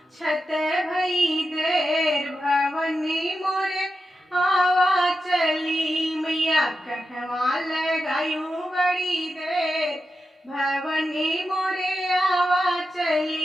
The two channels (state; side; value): normal; both; correlation 0.90